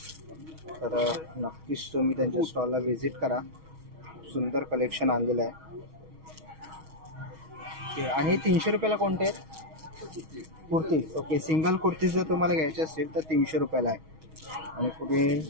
तर नक्कीच तुम्ही त्यांच्या स्टॉलला व्हिजिट करा. सुंदर कलेक्शन आणलेलं आहे. ओके आणि 300 रुपयाला कोणते आहेत? कुर्तीज. ओके सिंगल कुर्तीज जर तुम्हाला घ्यायचे असतील तर 300 रुपयाला आहे. आणि पुढे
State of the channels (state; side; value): late; left; 6.3 ms